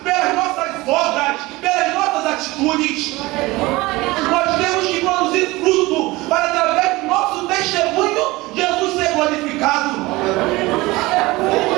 pelas nossas obras, atitudes. Nós temos que produzir fruto para, através do nosso testemunho, Jesus ser glorificado.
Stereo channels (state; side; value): quieter; left; 20.9 dB